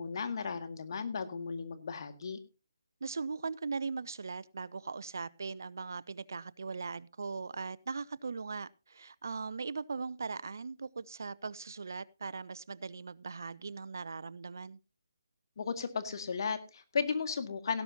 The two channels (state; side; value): inverted; both; correlation -0.79